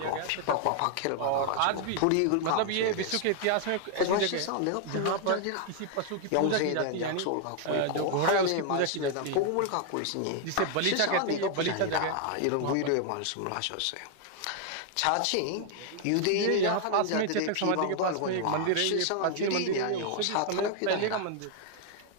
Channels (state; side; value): different; both; correlation 0.00